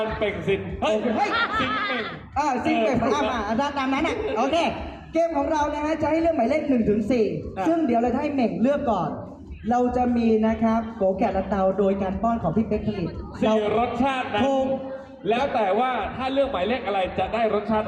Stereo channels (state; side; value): identical; both; correlation 1.00